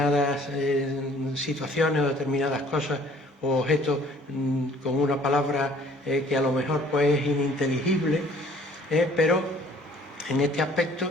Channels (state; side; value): normal; both; correlation 0.55